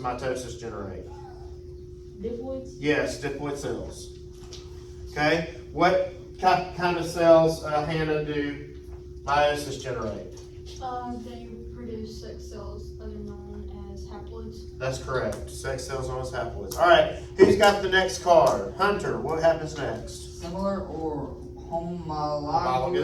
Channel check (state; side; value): identical; both; correlation 1.00